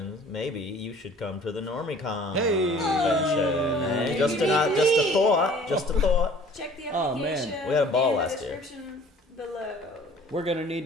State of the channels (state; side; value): normal; both; correlation 0.50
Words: maybe you should come to the NormieCon convention. Hey, just a thought. Check the application. Oh, man. We had a ball in last the year. description below. We're going to